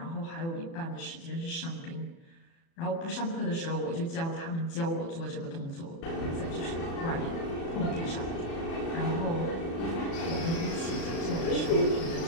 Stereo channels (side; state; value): right; late; 36 ms